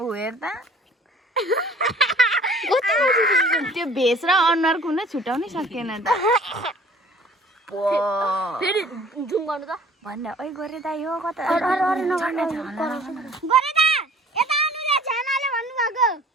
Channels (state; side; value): normal; both; correlation 0.50